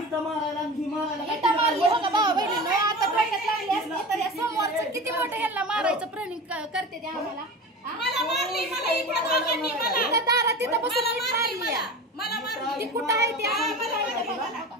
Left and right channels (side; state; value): both; normal; correlation 0.31